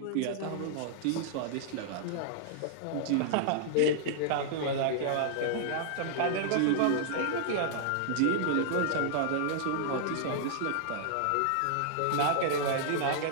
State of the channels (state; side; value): different; both; correlation -0.01